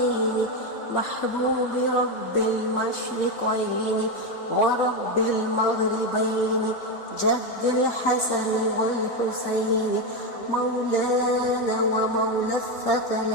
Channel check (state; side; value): late; right; 4.1 ms